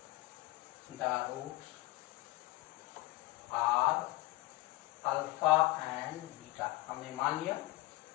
alpha and beta, हमने मान लिया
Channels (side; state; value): right; quieter; 19.8 dB